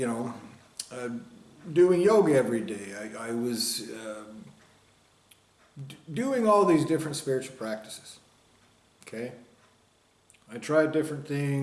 doing yoga every day. I was doing all these different spiritual practices. Okay? I tried different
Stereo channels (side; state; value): both; identical; correlation 1.00